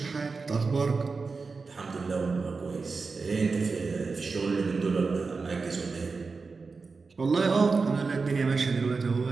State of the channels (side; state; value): left; quieter; 4.4 dB